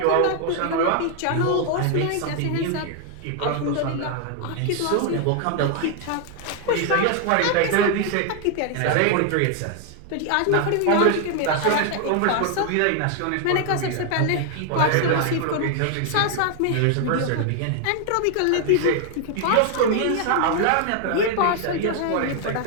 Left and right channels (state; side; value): different; both; correlation 0.00